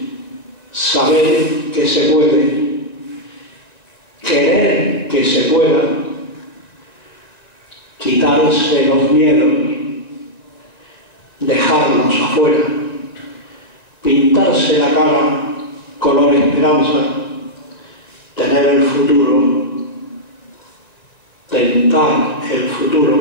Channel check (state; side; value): late; right; 1.9 ms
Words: saber que se puede, querer que se pueda, quitarse los miedos, dejarlos afuera, pintarse la cara color esperanza, tener el futuro, tentar el futuro